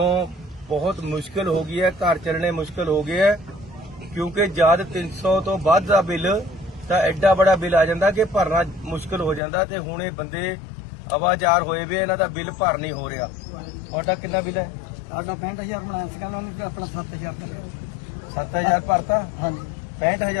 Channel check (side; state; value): right; drops out; at 9.4 s